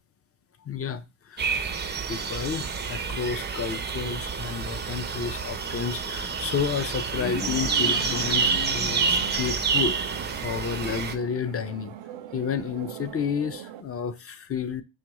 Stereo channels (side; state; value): both; normal; correlation -0.02